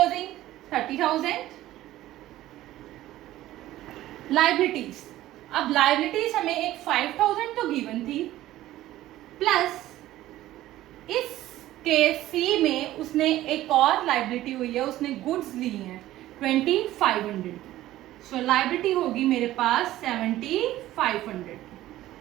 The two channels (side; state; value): left; quieter; 14.9 dB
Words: 30,000. लायबिलिटीज, अब लायबिलिटीज हमें एक 5,000 तो गिवन थी, प्लस इस केस सी में उसने एक और लायबिलिटी हुई है, उसने गुड्स ली हैं 2500 की. सो लायबिलिटी होगी मेरे पास 7500.